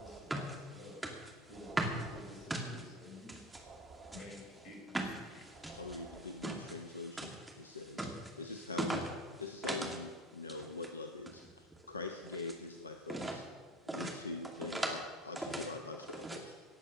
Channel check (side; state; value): both; normal; correlation 0.36